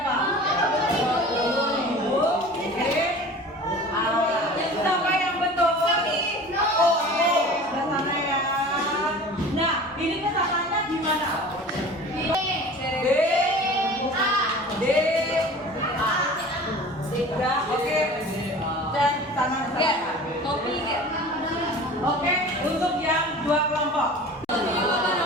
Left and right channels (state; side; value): normal; both; correlation 0.40